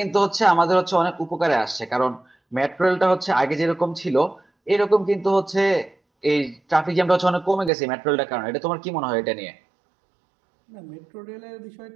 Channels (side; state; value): left; drops out; at 7.7 s